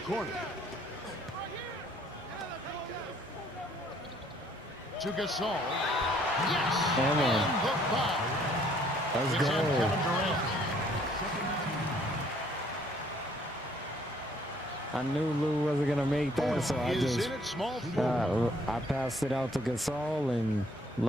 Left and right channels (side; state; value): both; normal; correlation 0.63